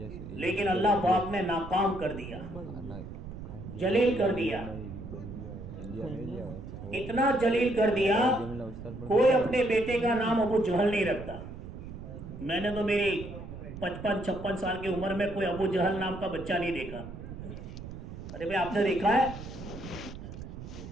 लेकिन अल्लाह पाक ने नाकाम कर दिया, जलील कर दिया, इतना जलील कर दिया कोई अपने बेटे का नाम अबू जहल नहीं रखता। मैंने तो मेरी 55-56 साल की उम्र में कोई अबू जहल नाम का बच्चा नहीं देखा। अरे भाई, आपने देखा है?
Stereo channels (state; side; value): noise; right; rumble, 11 dB below the sound